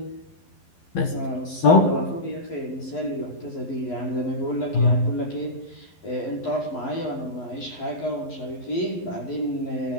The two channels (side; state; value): right; late; 11 ms